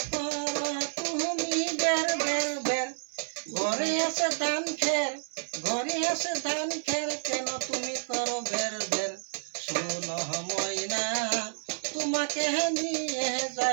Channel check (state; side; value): silent; left; 58 dB below the other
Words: করো তুমি বের বের বের, ঘরে আছে ধান খের, ঘরে আছে ধান খের কেন তুমি করো বের বের, শুনো ময়না তোমাকে নিয়ে